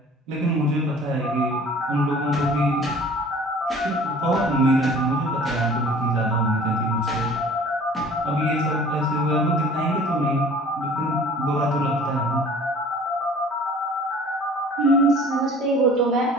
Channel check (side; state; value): both; normal; correlation 0.48